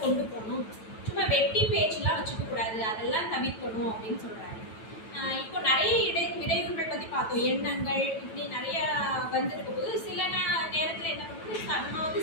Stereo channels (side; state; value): right; late; 9.1 ms